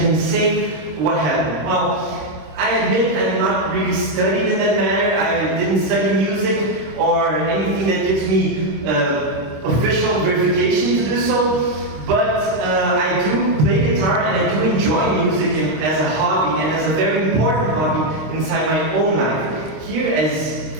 can say what happened? Well, I admit I'm not really studied in that matter. I didn't study music or anything that gives me official verification to do so. But I do play guitar and I do enjoy music as a hobby and as a very important hobby inside my own life. Here, as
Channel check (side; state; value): left; late; 26 ms